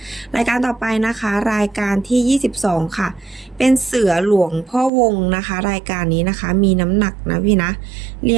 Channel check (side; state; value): left; drops out; at 4.9 s